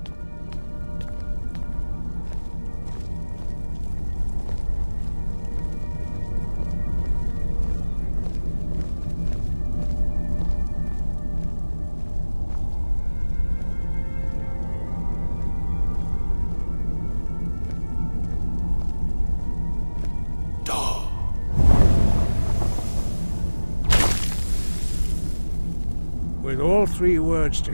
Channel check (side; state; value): both; inverted; correlation -1.00